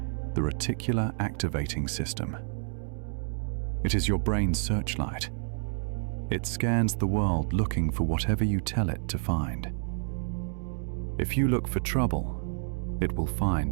the reticular activating system. It is your brain's searchlight. It scans the world looking for whatever you tell it to find. If you look for trouble, it will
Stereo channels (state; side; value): silent; left; digital silence